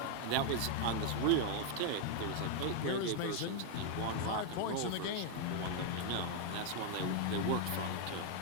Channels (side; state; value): both; different; correlation 0.00